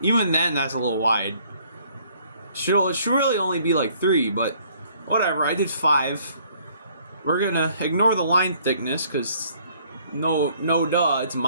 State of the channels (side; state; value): both; inverted; correlation -0.62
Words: even then, that's a little wide. It should really only be like 3, but whatever. I did 5. We're gonna ignore the line thickness because no duh, it's